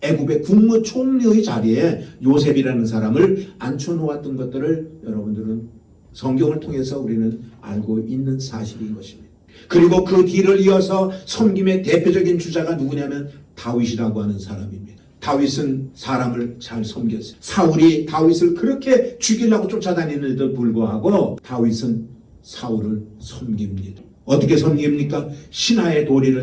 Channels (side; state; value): both; identical; correlation 1.00